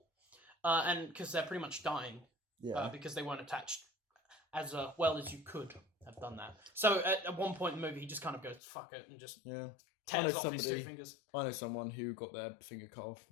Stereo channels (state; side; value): drops out; right; at 8.6 s